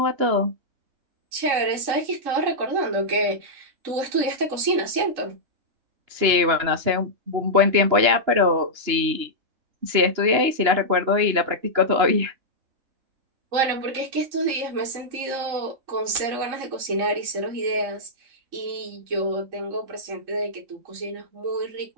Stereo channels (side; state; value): left; late; 2.9 ms